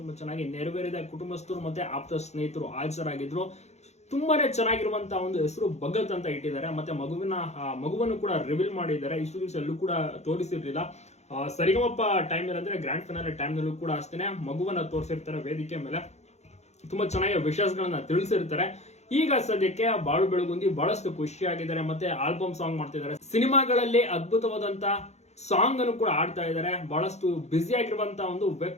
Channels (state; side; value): late; right; 0.32 ms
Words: ತುಂಬಾ ಚೆನ್ನಾಗಿ ನೆರವೇರಿದ. ಕುಟುಂಬಸ್ಥರು ಮತ್ತೆ ಆಪ್ತ ಸ್ನೇಹಿತರು ಹಾಜರಾಗಿದ್ರು. ತುಂಬಾನೇ ಚೆನ್ನಾಗಿರುವಂತಹ ಒಂದು ಹೆಸರು ಭಗತ್ ಅಂತ ಇಟ್ಟಿದ್ದಾರೆ. ಮತ್ತೆ ಮಗುವನ್ನು ಕೂಡ ರಿವೀಲ್ ಮಾಡಿದ್ದಾರೆ. ಇಷ್ಟು ದಿವಸ ಎಲ್ಲೂ ಕೂಡ ತೋರಿಸಿರ್ಲಿಲ್ಲ. ಸರಿಗಮಪ್ಪ ಟೈಮ್ ಅಂದ್ರೆ ಗ್ರ್ಯಾಂಡ್ ಫೈನಲ್ ಟೈಮ್ ನಲ್ಲೂ ಕೂಡ ಅಷ್ಟೇ ಮಗುವನ್ನ ತೋರಿಸಿರ್ತಾರೆ ವೇದಿಕೆ ಮೇಲೆ. ತುಂಬಾ ಚೆನ್ನಾಗಿ ವಿಷಯಗಳನ್ನ ತಿಳಿಸಿರ್ತಾರೆ. ಈಗ ಸದ್ಯಕ್ಕೆ ಬಾಳು ಬೆಳಗುಂದಿ ಬಹಳಷ್ಟು ಖುಷಿಯಾಗಿದ್ದಾರೆ. ಮತ್ತೆ ಆಲ್ಬಮ್ ಸಾಂಗ್ ಮಾಡ್ತಿದ್ದಾರೆ. ಸಿನಿಮಾಗಳಲ್ಲಿ ಅದ್ಭುತವಾದಂತ ಸಾಂಗ್ ಅನ್ನು ಕೂಡ ಆಡ್ತಾ ಇದ್ದಾರೆ. ಬಹಳಷ್ಟು ಬ್ಯುಸಿ ಆಗಿರುವಂತಹ ಒಂದು